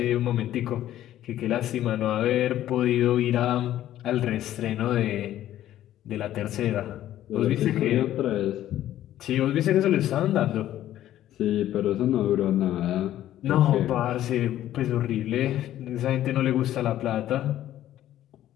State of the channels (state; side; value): quieter; right; 12.8 dB